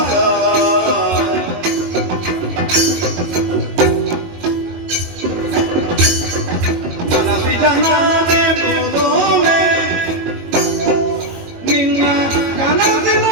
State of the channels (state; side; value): late; left; 22 ms